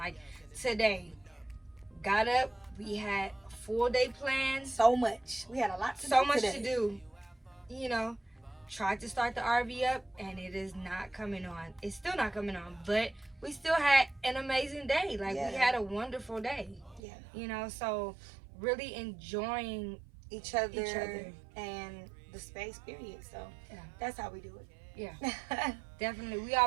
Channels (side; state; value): left; drops out; at 17.0 s